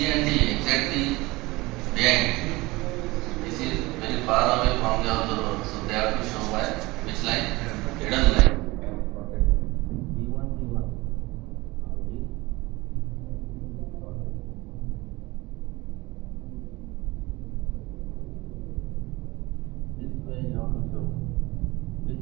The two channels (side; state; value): left; quieter; 21.5 dB